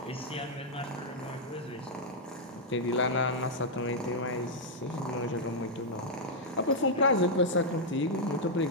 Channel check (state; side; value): normal; both; correlation -0.04